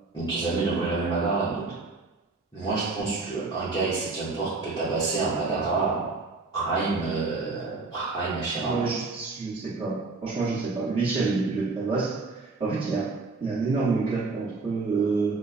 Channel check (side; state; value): left; quieter; 3.7 dB